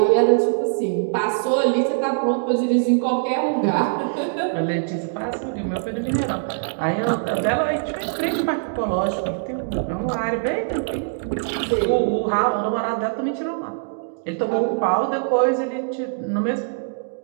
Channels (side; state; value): left; silent; digital silence